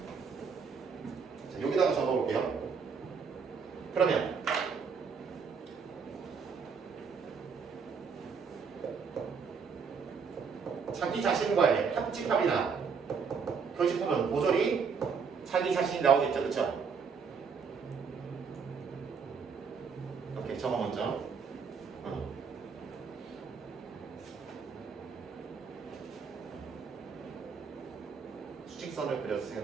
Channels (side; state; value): left; quieter; 5.8 dB